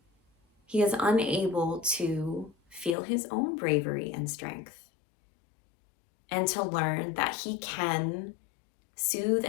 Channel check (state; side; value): drops out; right; at 3.0 s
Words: he is unable to feel his own bravery and strength, and to learn that he can soothe